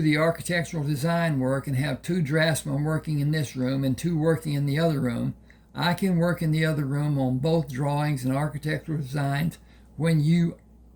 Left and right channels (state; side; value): identical; both; correlation 1.00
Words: the architectural design work and have 2 draftsmen working in this room and 2 working in the other room, I can work in the other room on both drawings and architectural designs when you